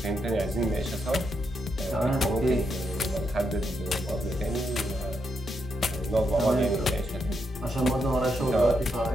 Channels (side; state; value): both; normal; correlation 0.81